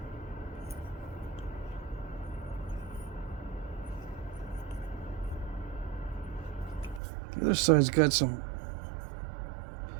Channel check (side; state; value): left; drops out; at 7.0 s